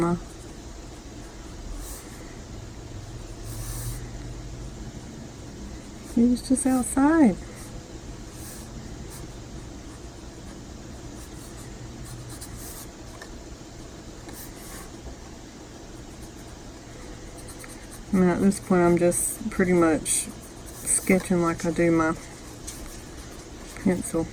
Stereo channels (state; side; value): identical; both; correlation 1.00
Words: He was just outside. Now at this point I'm just pretty much sketching like I do my pencil.